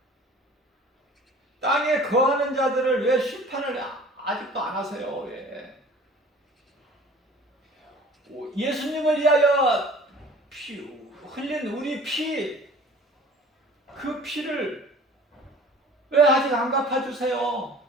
땅에 거하는 자들을 왜 심판을 아직도 안 하세요? 왜? 예수님을 위하여 흘린 우리 피, 그 피를 왜 아직 안 갚아주세요?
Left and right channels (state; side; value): normal; both; correlation 0.46